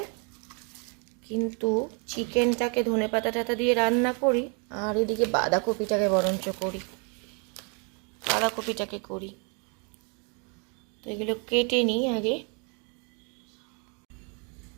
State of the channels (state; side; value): quieter; left; 35.9 dB